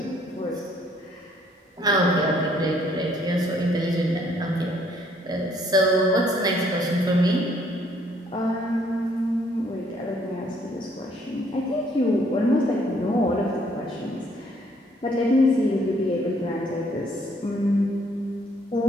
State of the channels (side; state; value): both; normal; correlation 0.65